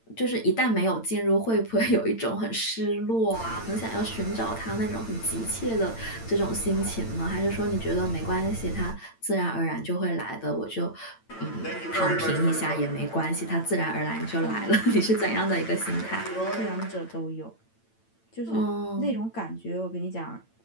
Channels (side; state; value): right; late; 8.9 ms